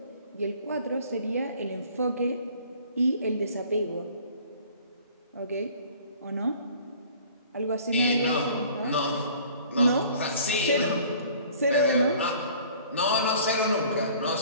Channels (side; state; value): both; inverted; correlation -0.51